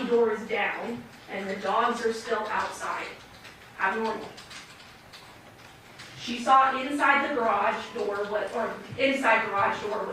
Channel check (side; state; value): both; identical; correlation 1.00